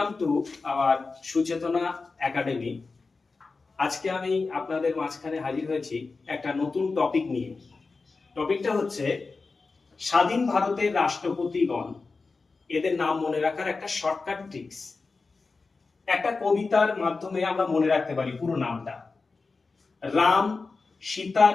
to our Suchetana academy. আজকে আমি আপনাদের মাঝখানে হাজির হয়েছি একটা নতুন টপিক নিয়ে। টপিকটা হচ্ছে স্বাধীন ভারতের রাষ্ট্রপতিগণ, এদের নাম মনে রাখার একটা শর্টকাট ট্রিক্স। একটা কবিতার মাধ্যমে আমরা মনে রাখতে পারি পুরো নামটা। রাম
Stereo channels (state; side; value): quieter; right; 4.1 dB